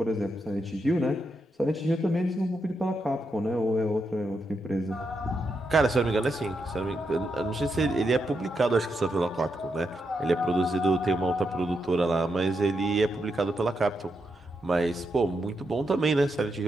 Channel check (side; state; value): both; normal; correlation 0.83